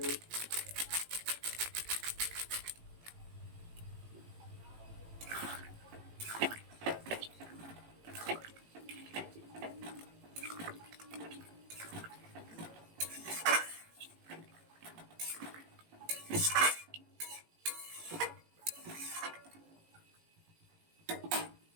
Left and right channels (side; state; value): left; late; 18 ms